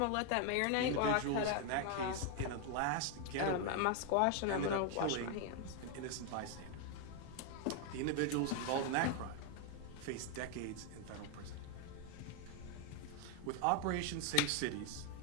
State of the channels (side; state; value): both; different; correlation 0.01